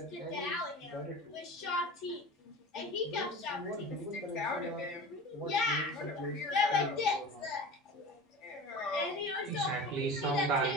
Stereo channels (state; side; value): normal; both; correlation 0.34